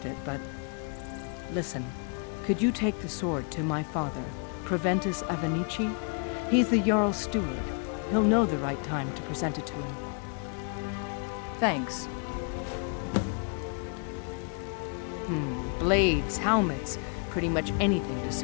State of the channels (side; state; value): right; quieter; 39.4 dB